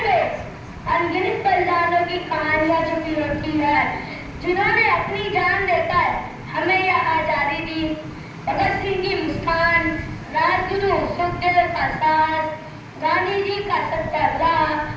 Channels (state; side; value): identical; both; correlation 1.00